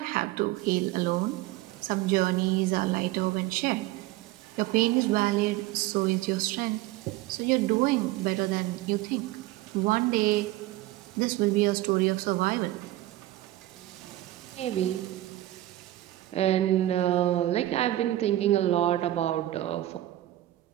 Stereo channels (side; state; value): left; quieter; 15.7 dB